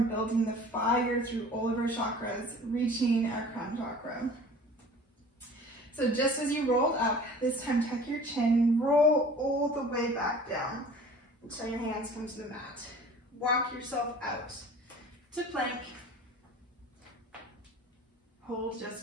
building the fire through all of our chakras, reaching our crown chakra. So just as you rolled up, this time tuck your chin, roll all the way back down until your hands come to the mat. Walk yourself out to plank. Hold just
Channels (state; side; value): normal; both; correlation 0.45